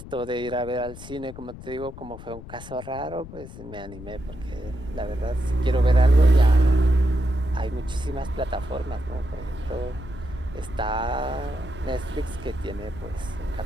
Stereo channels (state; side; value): noise; left; rumble, 14 dB below the sound